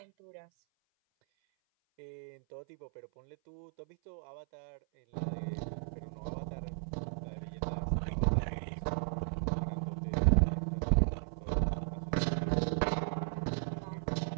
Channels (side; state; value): left; silent; 54 dB below the other